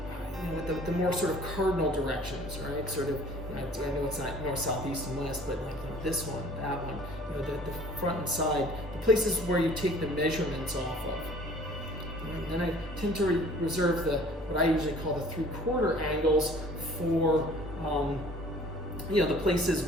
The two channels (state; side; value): normal; both; correlation 0.51